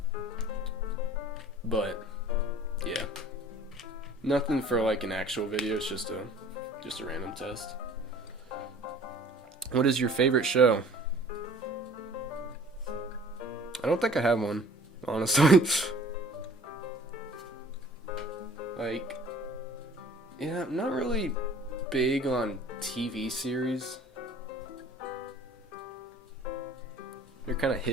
But yeah. Nothing for like an actual video, it's just a random test. What is your favorite show? I don't think I have one, honestly. Like, yeah, I'm not really big on TV series. They're kind of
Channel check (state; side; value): normal; both; correlation 0.50